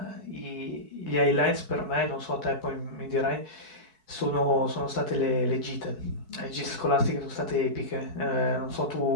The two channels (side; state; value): left; late; 4.6 ms